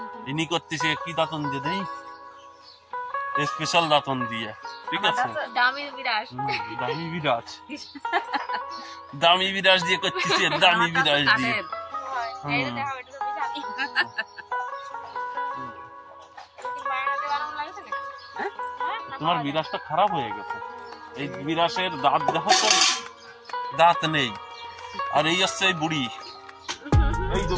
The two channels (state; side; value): identical; both; correlation 1.00